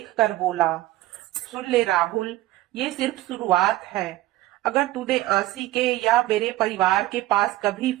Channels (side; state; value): left; quieter; 16.6 dB